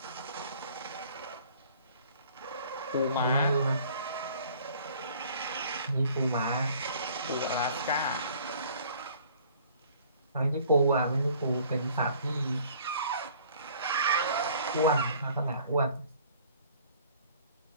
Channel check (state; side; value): inverted; both; correlation -0.54